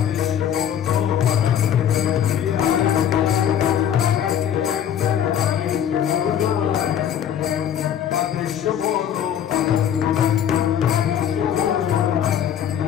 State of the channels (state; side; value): quieter; right; 9.4 dB